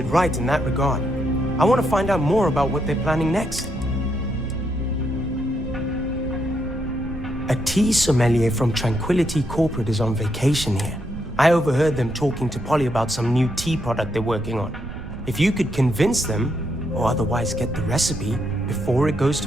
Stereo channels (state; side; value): noise; right; rumble, 10 dB below the sound